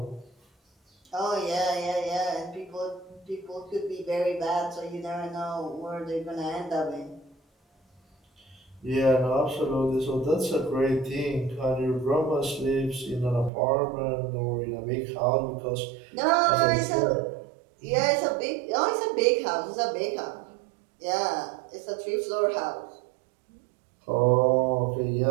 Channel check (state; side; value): drops out; left; at 13.5 s